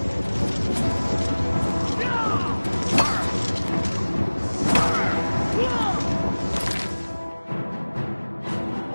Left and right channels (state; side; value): inverted; both; correlation -1.00